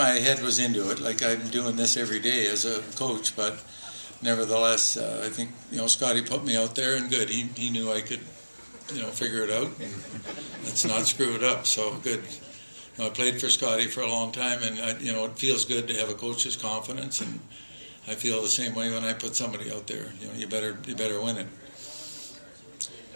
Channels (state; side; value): inverted; both; correlation -1.00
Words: head was into it. Like I'm doing this every day as a coach, but nevertheless, I think Scotty put me out there, and good. He knew I could, figure it out, and let's not screw it up. So good. I played for Scotty for a long time, and it feels good to have a coach's confidence, and I feel the same way when I put somebody out there. You better win it. You